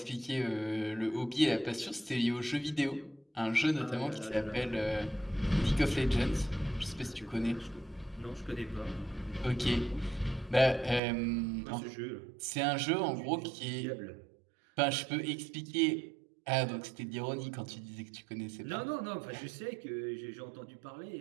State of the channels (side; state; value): left; drops out; at 11.0 s